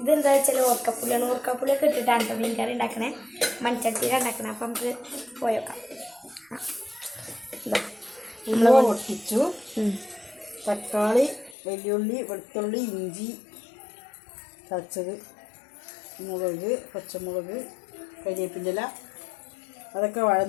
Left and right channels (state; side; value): drops out; right; at 11.6 s